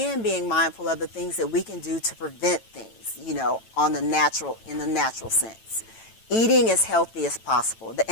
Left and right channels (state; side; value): late; right; 9.0 ms